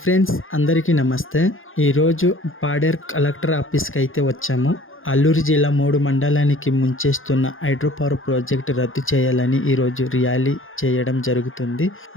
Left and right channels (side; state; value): right; late; 0.59 ms